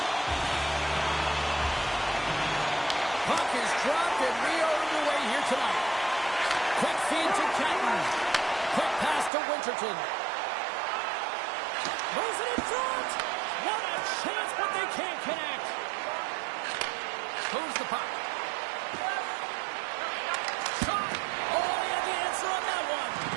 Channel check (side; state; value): left; drops out; at 9.3 s